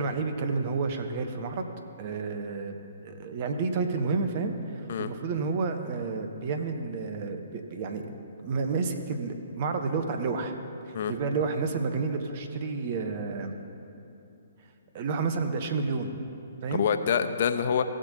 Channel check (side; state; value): both; inverted; correlation -0.54